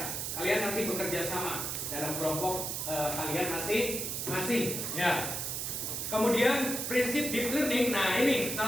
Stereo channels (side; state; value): right; noise; hiss, 3 dB below the sound